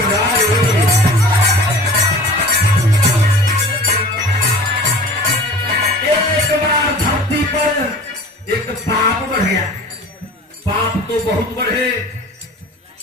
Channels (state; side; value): normal; both; correlation 0.41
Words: एक पाप बढ़ गया। पाप तो बहुत बढ़े,